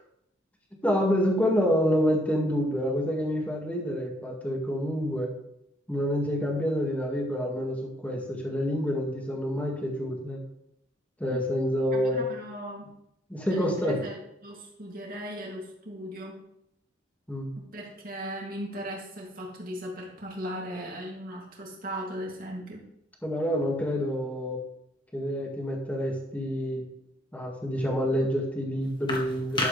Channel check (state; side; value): normal; both; correlation 0.67